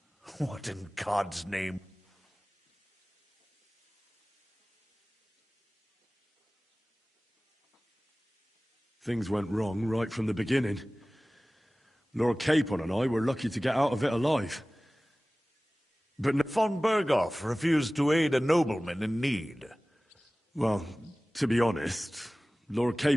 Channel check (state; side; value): normal; both; correlation 0.98